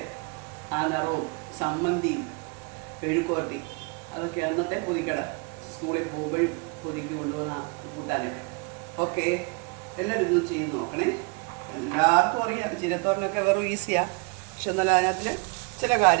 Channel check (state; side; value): quieter; left; 31.6 dB